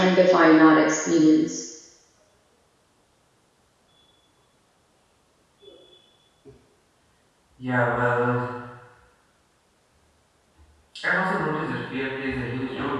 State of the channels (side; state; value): both; identical; correlation 1.00